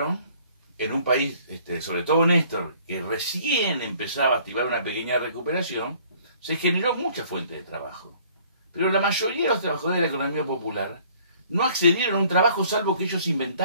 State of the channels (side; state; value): both; inverted; correlation -0.56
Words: en un país, sobre todo Néstor, que recién empezaba a activar una pequeña recuperación, se generó mucha fuente de trabajo. Pero la mayoría de los trabajadores de la economía popular no accedieron a un trabajo salvo que ellos